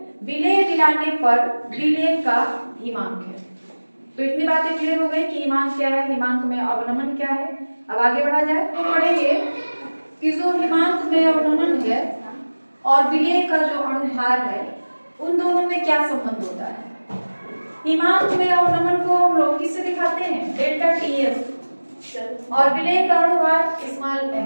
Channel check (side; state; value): both; inverted; correlation -1.00